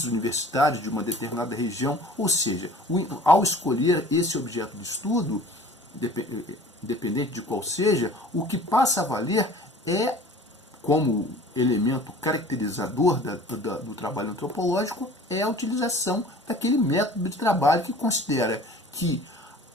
universitários de uma determinada região. Ou seja, ao escolher esse objeto de estudo, independente de qual seja, o que passa a valer como elemento caracterizador do trabalho antropológico, é a utilização daquele método de trabalho que considera que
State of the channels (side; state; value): both; normal; correlation 0.46